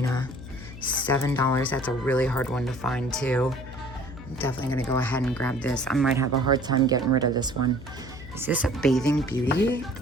$7. That's a really hard one to find too. I'm definitely gonna go ahead and grab this. I might have a hard time getting rid of this one. Is this a Bathing Beauty?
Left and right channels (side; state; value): left; noise; hum, 14 dB below the sound